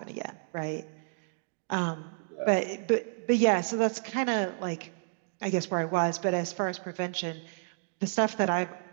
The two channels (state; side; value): silent; left; digital silence